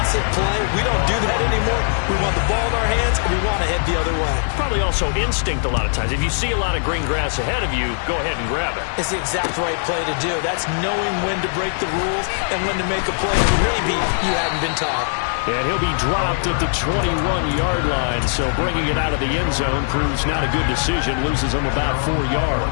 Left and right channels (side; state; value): right; silent; digital silence